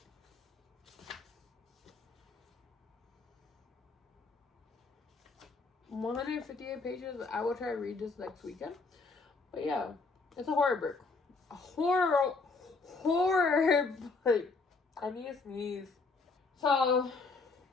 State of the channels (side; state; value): right; quieter; 4.0 dB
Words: 158 pages. I will try to read this next weekend. But yeah, it's a horror book. A horror book. I need to sneeze. So,